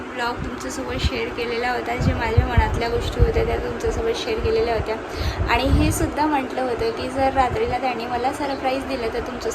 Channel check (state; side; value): identical; both; correlation 1.00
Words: ब्लॉग तुमच्यासोबत शेअर केलेला होता. जे माझ्या मनातल्या गोष्टी होत्या त्या तुमच्यासोबत शेअर केलेल्या होत्या आणि हे सुद्धा म्हटलं होतं की जर रात्रीला त्यांनी मला सरप्राईज दिलं तर